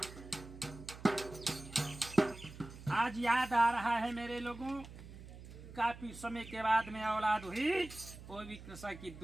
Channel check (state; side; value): noise; right; hum, 15 dB below the sound